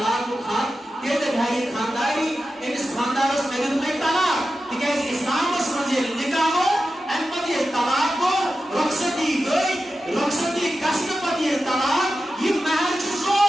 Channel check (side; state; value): both; normal; correlation 0.92